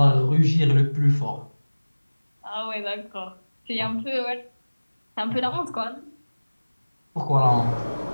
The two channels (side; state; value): both; inverted; correlation -1.00